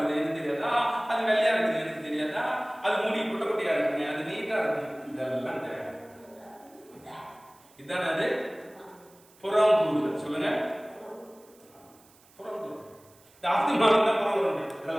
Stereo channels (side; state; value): right; noise; hiss, 28 dB below the sound